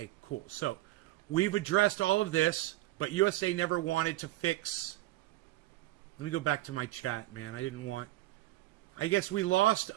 cool. So we've addressed all of this. But USA never wanted to fix... Let me go back to my chat, man. I didn't want... I guess we lost,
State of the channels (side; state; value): left; quieter; 16.9 dB